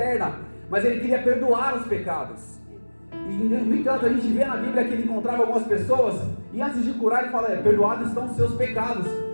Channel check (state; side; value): inverted; both; correlation -1.00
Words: mas Ele queria perdoar os pecados. E no entanto, a gente vê na Bíblia que Ele encontrava algumas pessoas, e antes de curar Ele fala, perdoados estão os seus pecados.